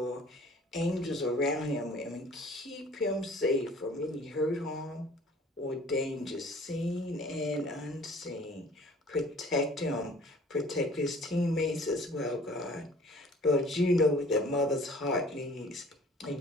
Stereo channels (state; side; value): normal; both; correlation 0.51